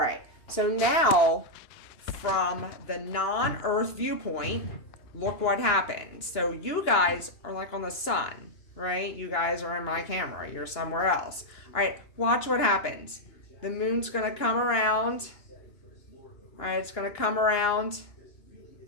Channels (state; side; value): late; right; 2.9 ms